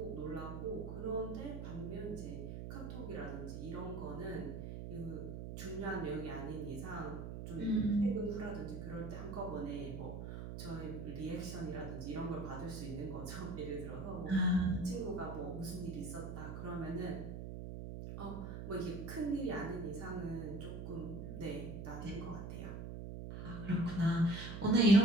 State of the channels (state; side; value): noise; right; hum, 7 dB below the sound